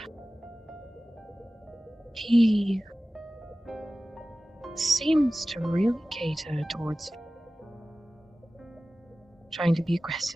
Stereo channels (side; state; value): both; normal; correlation 0.96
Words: He seems to really cater towards trying to be